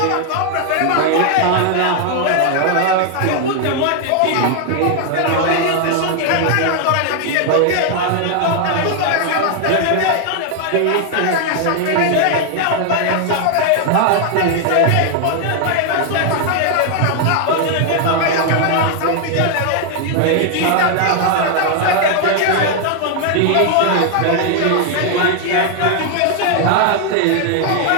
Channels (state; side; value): different; both; correlation 0.00